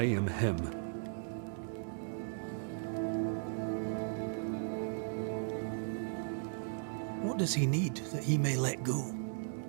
am him. What does he need that he may let go?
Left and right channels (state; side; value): silent; left; digital silence